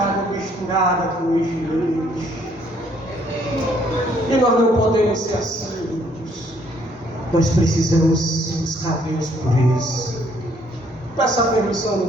misturada com lixo. E nós não podemos ser assim. Nós precisamos buscar Deus por isso. Peça a permissão do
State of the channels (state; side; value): normal; both; correlation 0.66